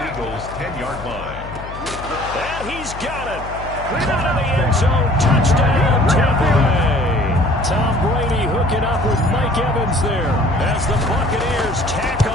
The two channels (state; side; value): noise; left; hum, 13 dB below the sound